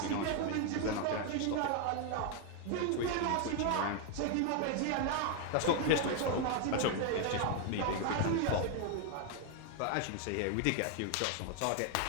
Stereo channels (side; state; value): both; different; correlation 0.01